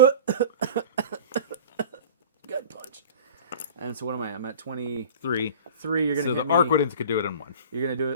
punch. And so what am I? I'm at 23. You're gonna so hit the Arquidens could do it in 1. You're gonna do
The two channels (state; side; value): inverted; both; correlation -0.40